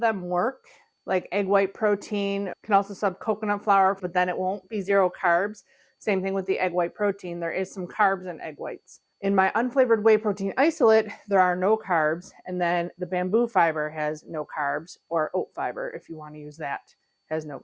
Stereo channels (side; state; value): both; identical; correlation 1.00